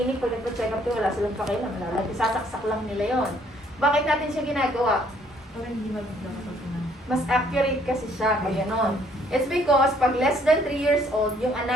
pag nagpa-check up to, wala silang pakialam, sasaksak lang nila yon. Bakit natin siya ginagawa? Mas accurate kasi siya, pag gano'n. It's because pag less than 3 years old, yung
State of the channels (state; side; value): normal; both; correlation 0.64